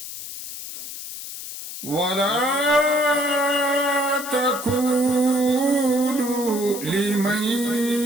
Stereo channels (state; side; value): noise; left; hiss, 10 dB below the sound